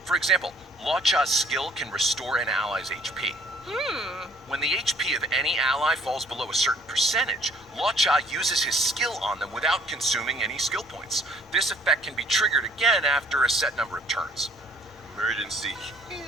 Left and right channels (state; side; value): normal; both; correlation 0.59